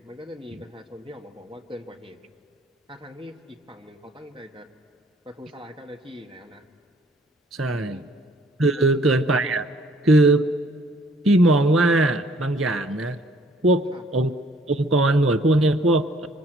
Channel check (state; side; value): normal; both; correlation 0.60